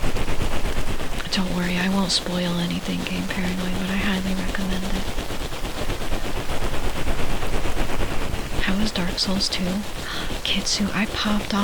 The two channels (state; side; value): identical; both; correlation 1.00